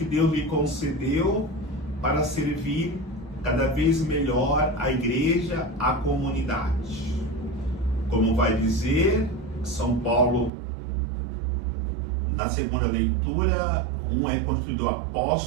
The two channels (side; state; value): left; drops out; at 10.5 s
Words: Deus lhe concedeu, para servir cada vez melhor a igreja, a comunidade. Como vai dizer São Paulo na segunda leitura, um é constituído